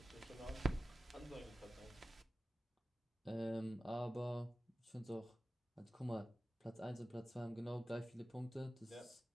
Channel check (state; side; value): normal; both; correlation 0.95